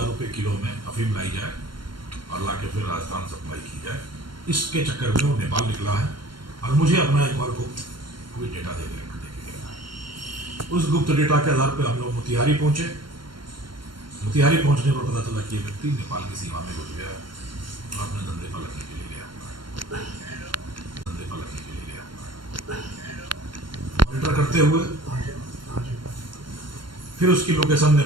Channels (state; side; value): late; left; 0.72 ms